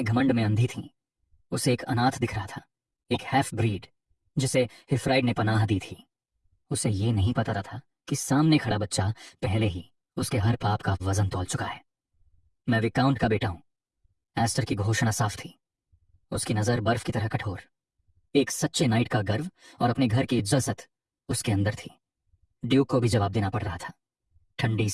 घमंड में अंधी थीं। उसे एक अनाथ दिख रहा था, एक हैफ ब्रीड जिसे हिफ्राइड ने पनाह दी थी। उसे ये नहीं पता था कि सामने खड़ा बच्चा पहले ही उसके हर पाप का वजन तौल चुका है। मैं विकाउंट का बेटा हूं। एस्टर की घोषणा साफ थी, उसकी नजर बर्फ की तरह कठोर। एक सच्चे नाइट का गर्व और अपने घर की इज्जत उसके अंदर थी। ड्यूक को भी जवाब देना पड़ रहा था, ठंडी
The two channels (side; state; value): both; identical; correlation 1.00